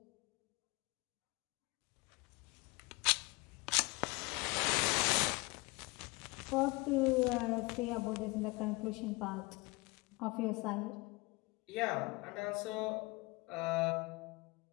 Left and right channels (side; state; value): right; quieter; 25.1 dB